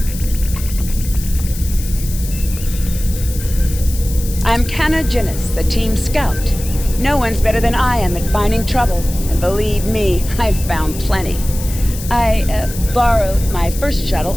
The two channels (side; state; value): left; noise; hiss, 12 dB below the sound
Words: I'm Canna Ginnis, the team scout. No one's better than I am at finding trouble, and believe me, I've found plenty. I borrowed my first